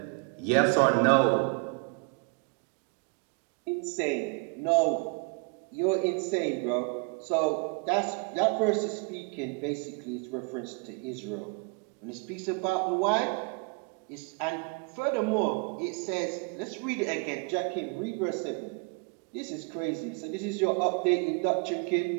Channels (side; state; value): left; quieter; 33.1 dB